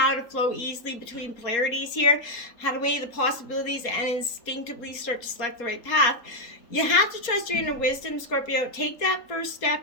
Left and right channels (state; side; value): late; right; 4.3 ms